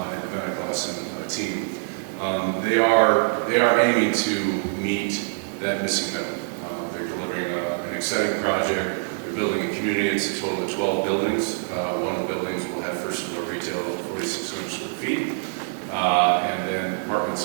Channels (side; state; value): left; silent; 62 dB below the other